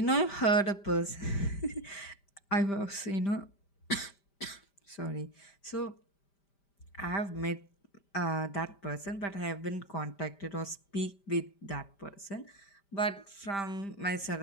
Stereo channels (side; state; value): right; late; 5.1 ms